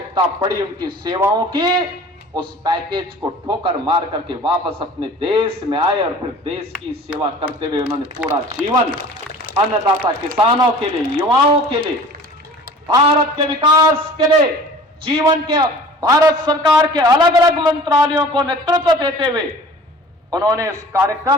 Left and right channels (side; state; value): both; normal; correlation 0.44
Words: पड़ी उनकी सेवाओं की, उस पैकेज को ठोकर मार करके वापस अपने देश में आए और फिर देश की सेवा करते हुए उन्होंने पूरा जीवन अन्नदाता किसानों के लिए, युवाओं के लिए, भारत के विकास के लिए, जीवन के भारत सरकार के अलग अलग मंत्रालयों को नेतृत्व देते हुए उन्होंने इस